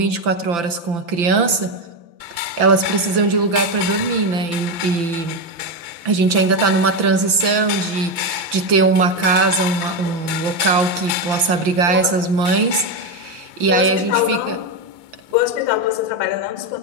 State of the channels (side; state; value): left; late; 5.9 ms